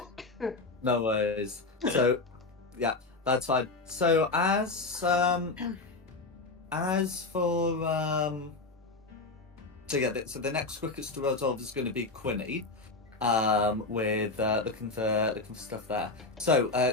No worries. So, yeah, that's fine. So as for so the next quickest to resolve is going to be Quinny, with looking for stuff there. So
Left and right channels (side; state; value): right; quieter; 3.6 dB